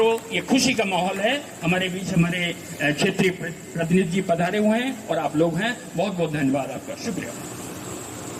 ये खुशी का माहौल है। हमारे बीच हमारे क्षेत्रीय प्रतिनिधि जी पधारे हुए हैं और आप लोग हैं। बहुत बहुत धन्यवाद आपका, शुक्रिया।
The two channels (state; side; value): identical; both; correlation 1.00